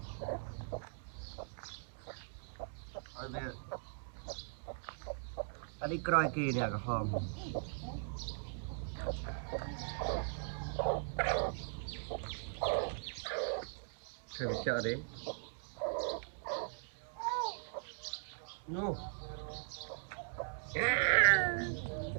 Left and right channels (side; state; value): left; silent; digital silence